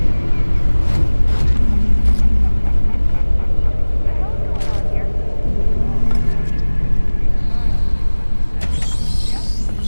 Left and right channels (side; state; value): both; inverted; correlation -1.00